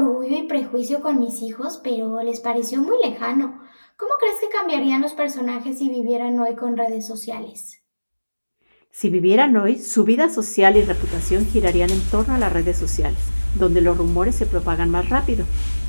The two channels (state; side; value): inverted; both; correlation -1.00